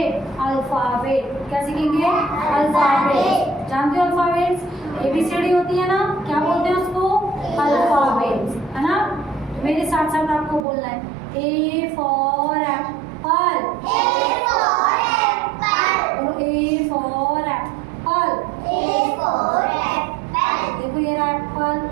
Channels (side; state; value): left; drops out; at 10.7 s